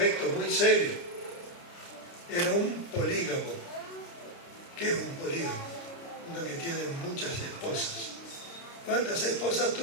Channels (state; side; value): late; right; 29 ms